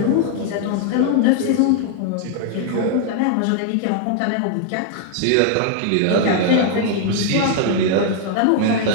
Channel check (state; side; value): different; both; correlation 0.00